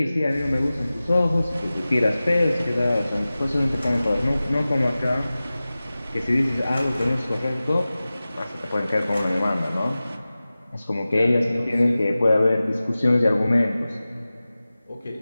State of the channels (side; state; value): both; inverted; correlation -0.97